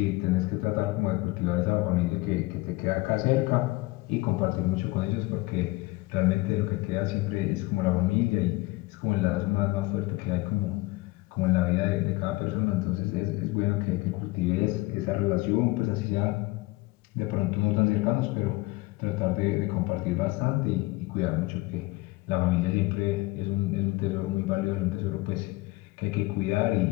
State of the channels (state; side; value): quieter; right; 21.9 dB